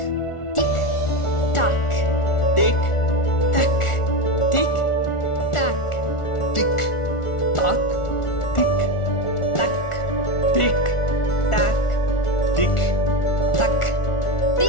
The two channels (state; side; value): late; right; 1.4 ms